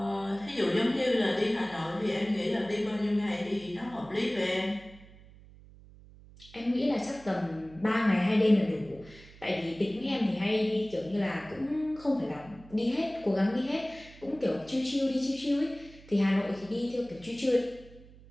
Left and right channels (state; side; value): noise; right; hum, 21 dB below the sound